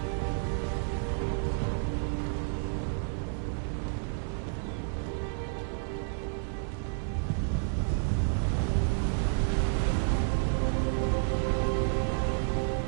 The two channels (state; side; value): silent; left; 57 dB below the other